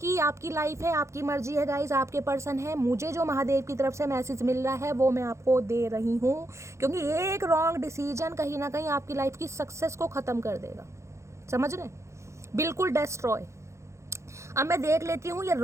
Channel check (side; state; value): left; late; 0.14 ms